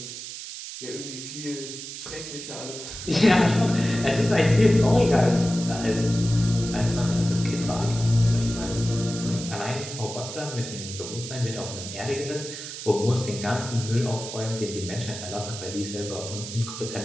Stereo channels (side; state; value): right; noise; hiss, 9 dB below the sound